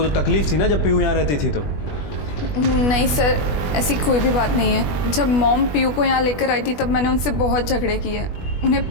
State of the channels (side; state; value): right; late; 20 ms